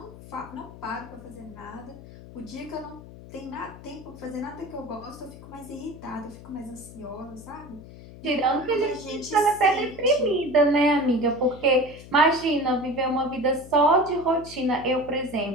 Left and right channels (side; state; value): left; noise; hum, 17 dB below the sound